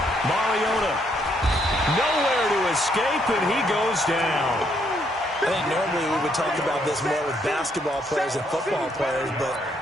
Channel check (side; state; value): both; normal; correlation 0.72